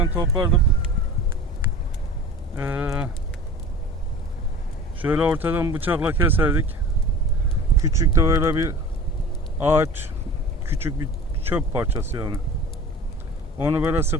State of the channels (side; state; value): both; normal; correlation 0.39